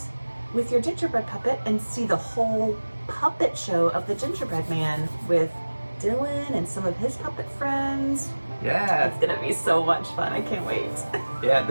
with your gingerbread puppet and see the whole puppet show of the gingerbread man with Dylan and some of his puppet friends. Yeah. It's gonna be so much fun. I can't wait. Yeah,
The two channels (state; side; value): inverted; both; correlation -1.00